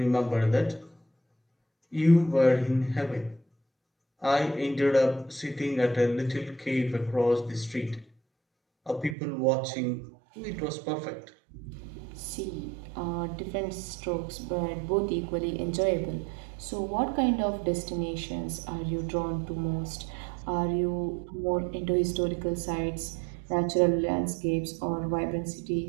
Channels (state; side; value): drops out; left; at 9.2 s